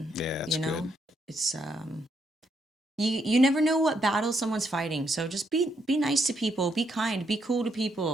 Yeah, it's you know good. it's you never know what battle someone's fighting, so just be nice to people, be kind, be cool to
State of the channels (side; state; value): both; normal; correlation 0.76